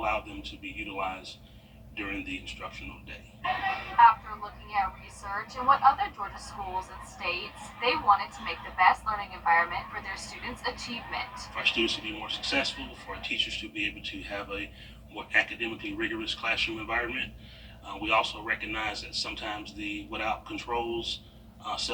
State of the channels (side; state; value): both; identical; correlation 1.00